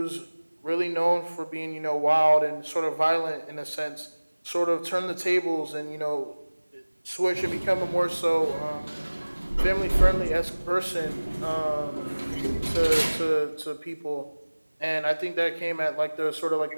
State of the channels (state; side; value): inverted; both; correlation -1.00